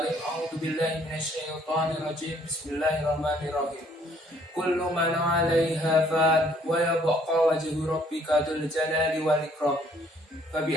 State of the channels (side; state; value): both; normal; correlation 0.63